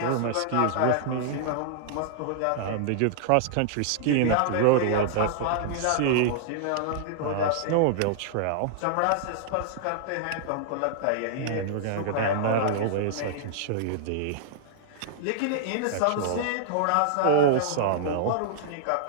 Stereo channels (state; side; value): different; both; correlation -0.01